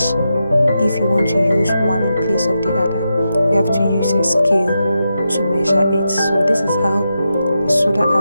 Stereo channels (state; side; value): inverted; both; correlation -0.87